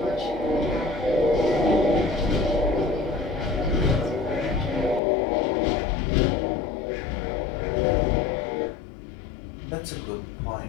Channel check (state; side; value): drops out; right; at 5.0 s